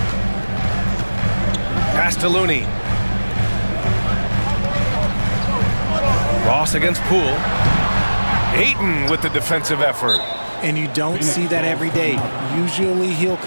Pass to Looney. Ross against Poole. Ayton with the defensive effort. And you don't see that every day. Usually he'll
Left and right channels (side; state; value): both; inverted; correlation -1.00